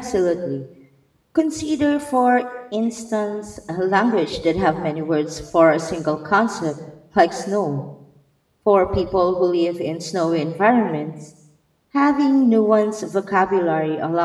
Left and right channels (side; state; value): both; identical; correlation 1.00